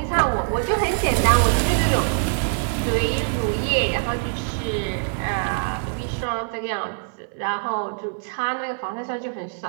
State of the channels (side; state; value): left; silent; 58 dB below the other